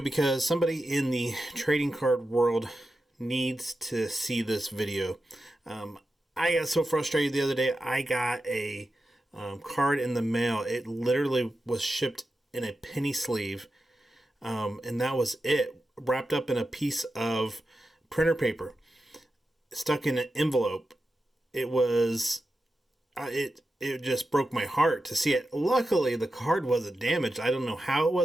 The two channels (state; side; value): normal; both; correlation 0.91